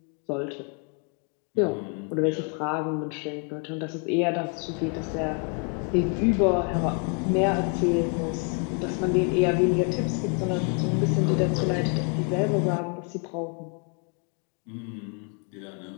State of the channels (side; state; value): right; quieter; 38.2 dB